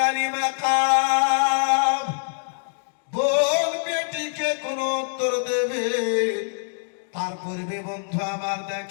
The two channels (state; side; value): silent; right; digital silence